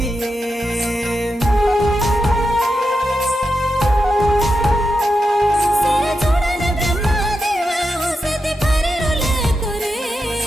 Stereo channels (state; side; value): normal; both; correlation 0.88